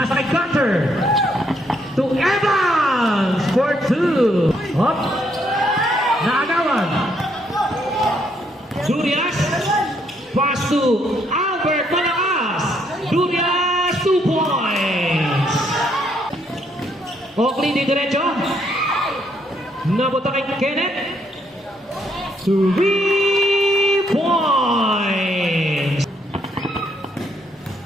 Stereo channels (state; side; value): normal; both; correlation 0.72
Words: kay Gunter. To Evans for 2. Up. Naagawan. Durias. Pass to Albert Malakas. Durias, 2 points. Oakley di diretso. Nabuta kay Kenneth. 3 points.